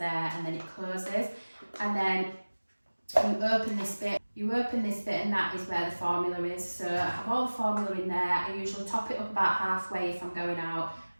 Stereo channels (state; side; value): inverted; both; correlation -1.00